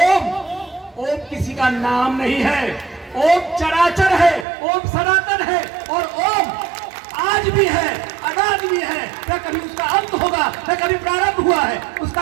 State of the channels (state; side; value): drops out; left; at 4.5 s